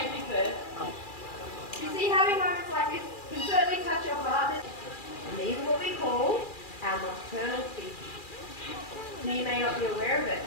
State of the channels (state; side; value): late; right; 2.4 ms